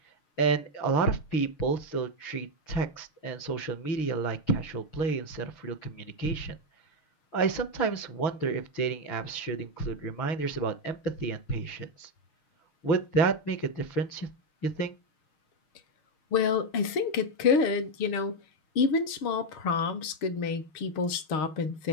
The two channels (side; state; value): right; late; 6.5 ms